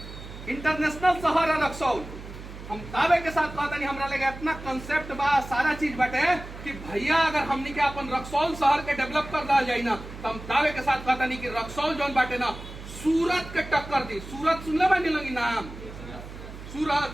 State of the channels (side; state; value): right; noise; hum, 13 dB below the sound